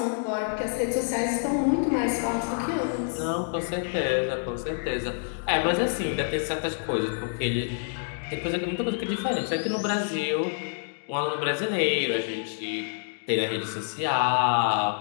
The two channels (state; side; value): silent; right; digital silence